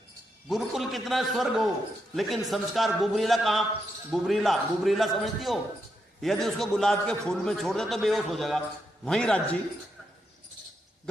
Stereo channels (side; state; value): both; normal; correlation 0.82